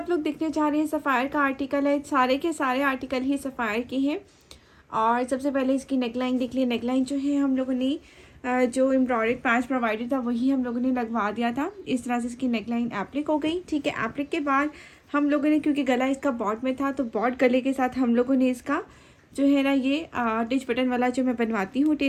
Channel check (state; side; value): identical; both; correlation 1.00